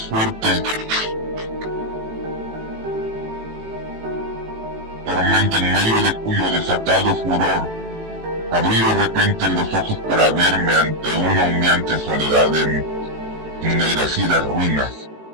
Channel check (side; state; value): left; late; 18 ms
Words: fuerte tormenta en medio de cuyo desatado furor abrí de repente los ojos para verme ante una humeante soledad de ennegrecidas ruinas.